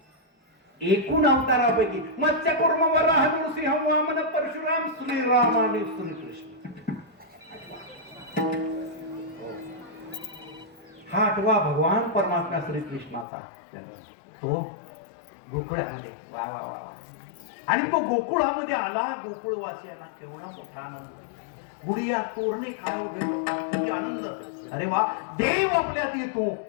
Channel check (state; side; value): drops out; right; at 13.2 s